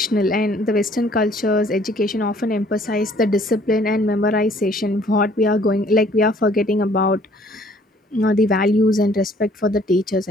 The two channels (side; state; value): both; normal; correlation 0.59